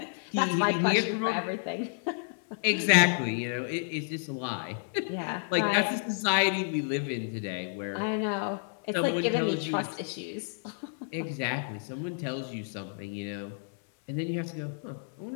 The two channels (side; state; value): right; silent; 58 dB below the other